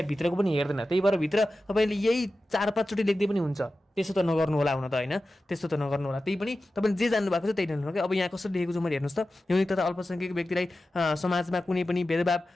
भित्रको पनि हेर्दैन। त्यही भएर भित्र तपाईँले यही 4-5 चोटि लेख्दै पनि हुन्छ। त्यसो त नगर्नु होला हुन त होइन, त्यस्तो त नगर्नु होला। त्यही पनि तपाईँले जे जान्नु भएको छ त्यही लेख्नु क्या। अब यहाँ कसरी लेखेको छु मैले हेर्नुहोस् त, यौनिक तथा अल्पसङ्ख्यक व्यक्तिलाई समाजमा कुनै पनि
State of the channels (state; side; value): normal; both; correlation 0.94